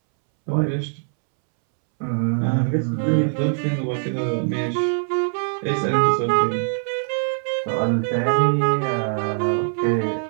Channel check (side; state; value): left; silent; 64 dB below the other